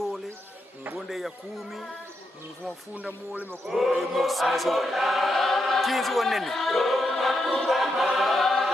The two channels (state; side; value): normal; both; correlation 0.83